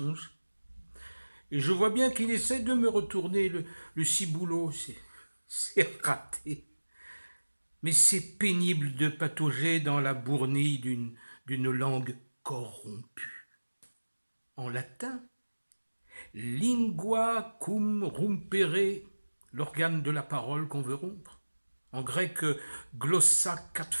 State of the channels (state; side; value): inverted; both; correlation -1.00